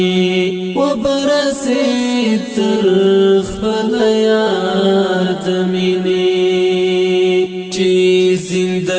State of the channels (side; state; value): both; identical; correlation 1.00